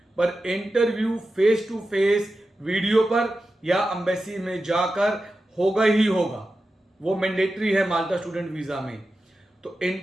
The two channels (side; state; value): both; normal; correlation 0.92